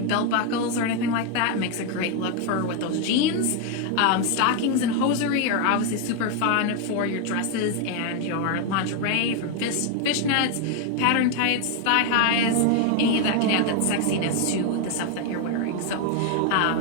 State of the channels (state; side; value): different; both; correlation 0.01